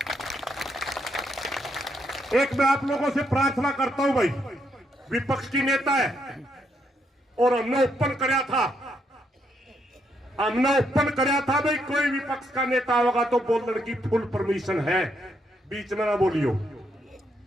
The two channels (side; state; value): both; normal; correlation 0.76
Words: एक मैं आप लोगों से प्रार्थना करता हूं भाई, विपक्ष की नेता है और हमने ओपन कराया था, भाई कोई विपक्ष का नेता होगा तो बोलने की फुल परमिशन है, बीच में ना बोलियो।